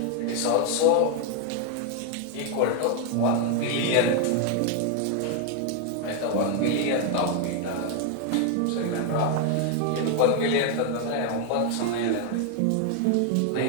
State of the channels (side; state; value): both; different; correlation 0.01